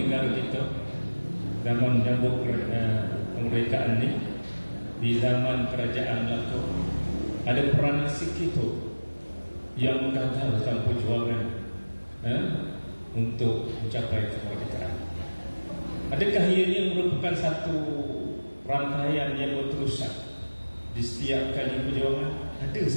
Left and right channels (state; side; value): inverted; both; correlation -1.00